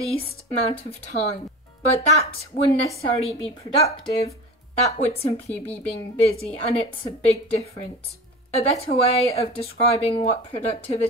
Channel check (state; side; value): normal; both; correlation 0.33